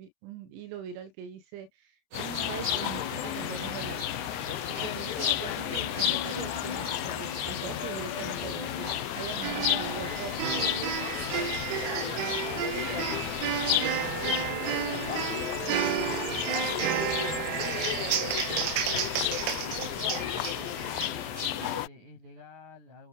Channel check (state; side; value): late; left; 25 ms